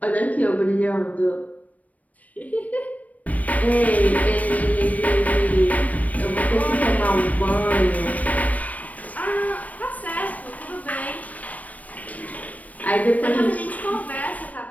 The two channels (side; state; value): right; late; 0.071 ms